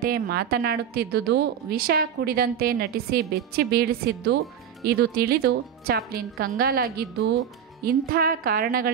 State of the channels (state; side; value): quieter; left; 8.5 dB